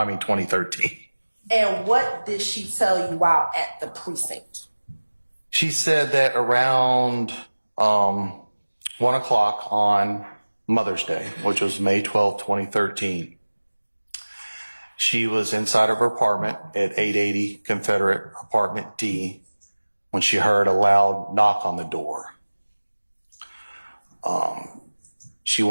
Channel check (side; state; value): both; inverted; correlation -1.00